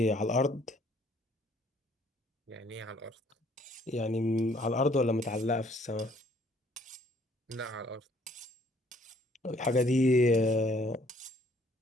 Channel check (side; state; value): both; normal; correlation 0.62